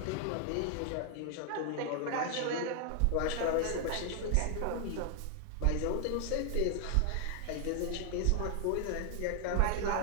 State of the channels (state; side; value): different; both; correlation 0.00